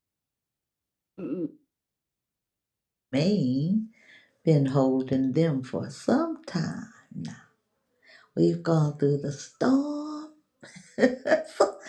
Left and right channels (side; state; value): both; identical; correlation 1.00